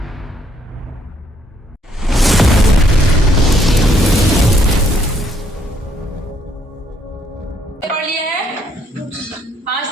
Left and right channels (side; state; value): both; normal; correlation 0.70